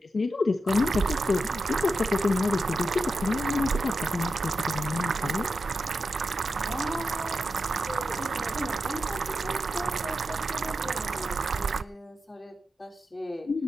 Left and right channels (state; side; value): normal; both; correlation 0.88